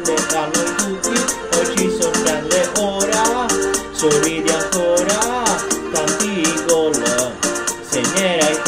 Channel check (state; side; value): identical; both; correlation 1.00